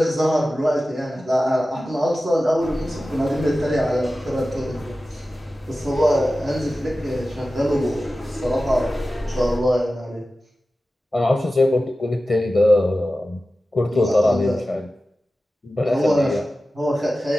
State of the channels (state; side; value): normal; both; correlation 0.94